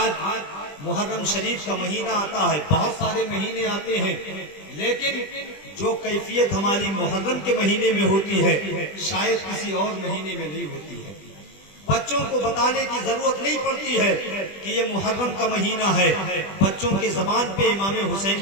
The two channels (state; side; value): late; right; 20 ms